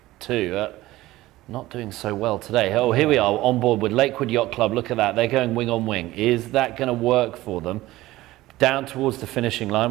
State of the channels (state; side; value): quieter; left; 17.2 dB